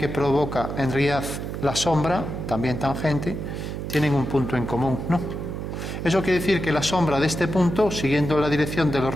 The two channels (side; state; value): right; noise; hum, 6 dB below the sound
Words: provoca en realidad la sombra, también tangente, tienen un punto en común, ¿no? Eso quiere decir que la sombra de este punto, siguiendo la dirección de los